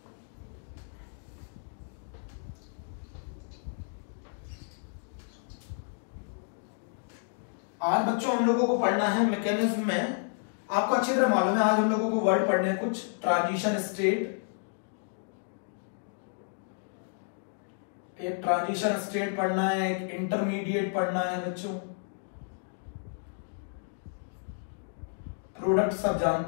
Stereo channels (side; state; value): right; silent; 57 dB below the other